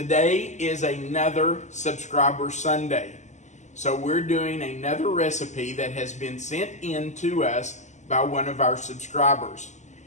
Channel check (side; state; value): right; late; 0.34 ms